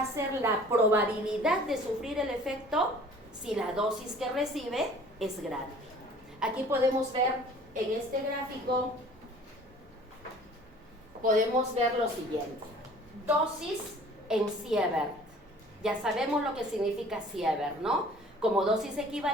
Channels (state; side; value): normal; both; correlation 0.49